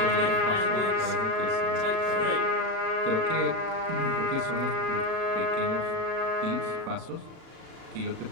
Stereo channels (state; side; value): late; left; 36 ms